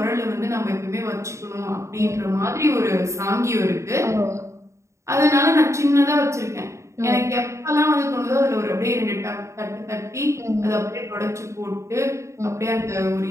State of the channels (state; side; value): late; left; 0.14 ms